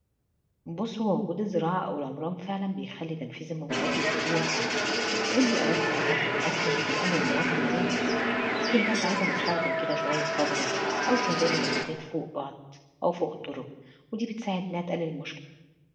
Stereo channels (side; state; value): both; identical; correlation 1.00